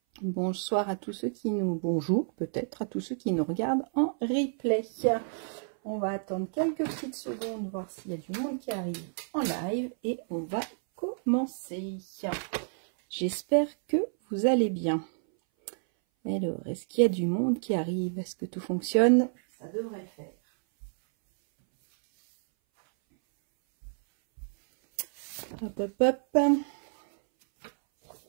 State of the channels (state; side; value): silent; left; 58 dB below the other